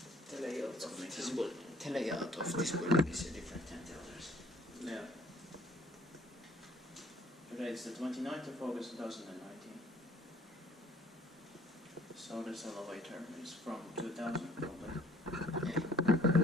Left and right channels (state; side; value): normal; both; correlation 0.57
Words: The layout of this building is different than the others. Yeah. Today it's the 29th of August 2019. So this elevator is from 2000 probably. Yeah.